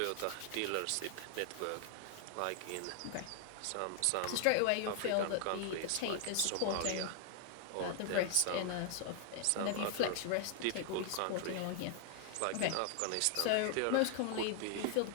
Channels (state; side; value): different; both; correlation 0.00